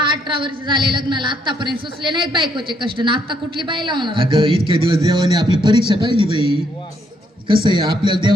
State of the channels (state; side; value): normal; both; correlation 0.72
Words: 18 वर्ष झाले लग्नाला, आतापर्यंत सुचले नाहीत बायकोचे कष्ट ना. आता कुठली बाई लावणार? अगं इतक्या दिवस देवाने आपली परीक्षा पाहिली बाई. कसं आहे, आपल्याला